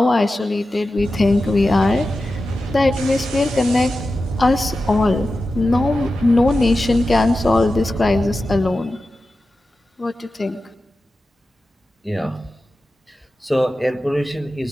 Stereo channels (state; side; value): normal; both; correlation 0.93